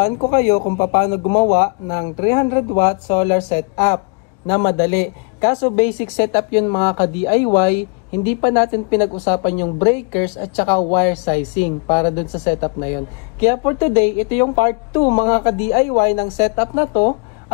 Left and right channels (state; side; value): quieter; right; 34.7 dB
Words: ko kayo kung paano gumawa ng 300 watt solar setup na madali. Kaso basic setup yun mga ka-DIY, hindi pa natin pinag-usapan yung breakers at saka wire sizing para dun sa setup na yun. Kaya for today, ito yung part 2 mga ka-DIY ng setup na to.